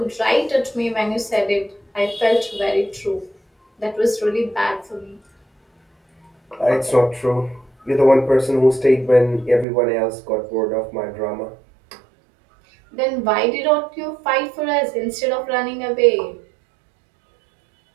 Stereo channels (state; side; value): drops out; left; at 9.7 s